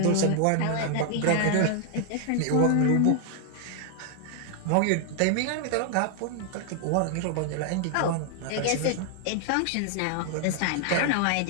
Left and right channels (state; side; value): different; both; correlation 0.00